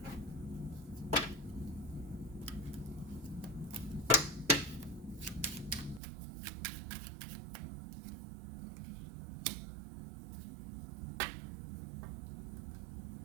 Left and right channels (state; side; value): drops out; left; at 6.0 s